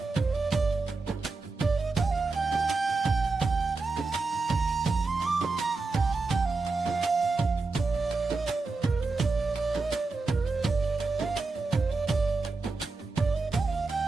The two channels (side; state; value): left; quieter; 3.9 dB